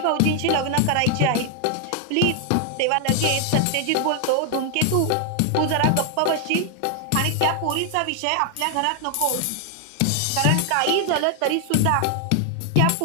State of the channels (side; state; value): both; different; correlation 0.00